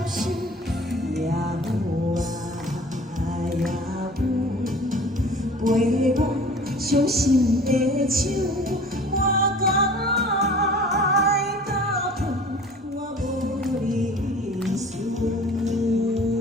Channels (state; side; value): normal; both; correlation 0.45